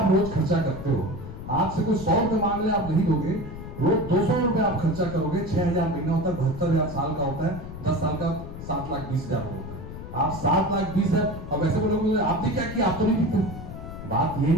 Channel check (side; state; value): left; noise; rumble, 11 dB below the sound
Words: रोज खर्चा करते हो, आपसे कोई 100 रुपए मांग ले आप नहीं दोगे, रोज 200 रुपए आप खर्चा करोगे, 6,000 महीना होता है, 72,000 साल का होता है, 10 साल का 7,20,000 होता है। आप 7,20,000 और वैसे बोलोगे आपने क्या किया, आप तो नहीं पीते। बात ये